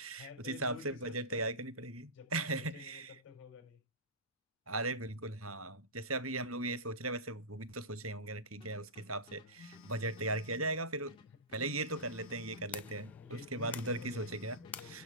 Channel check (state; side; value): normal; both; correlation -0.19